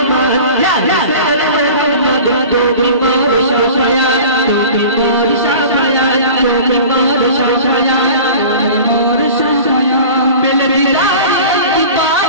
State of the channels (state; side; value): inverted; both; correlation -0.39